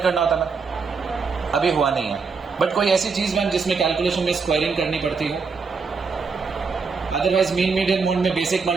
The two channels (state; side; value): quieter; left; 5.0 dB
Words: होता ना, अभी हुआ नहीं है। बट कोई ऐसी चीज मैम जिसमें कैलकुलेशन में स्क्वायरिंग करनी पड़ती है, अदरवाइज मीन मीडियन मोड में बेसिक